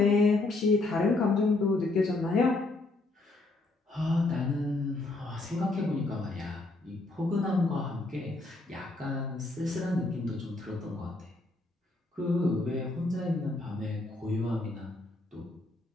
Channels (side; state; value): right; quieter; 3.1 dB